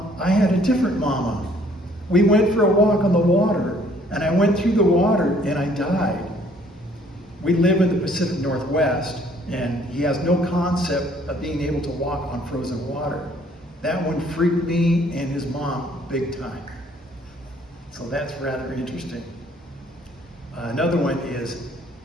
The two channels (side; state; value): both; normal; correlation 0.61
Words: I had a different mama. We went for a walk on the water, and I went through the water and I died. We live in the Pacific Northwest, and he has no concept of being able to walk on frozen water. That one freaked me and his mom big time. So that's rather interesting. Another one is,